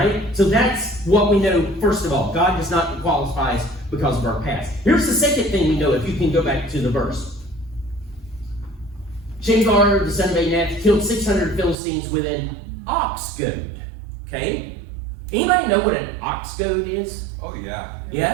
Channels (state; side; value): drops out; left; at 11.8 s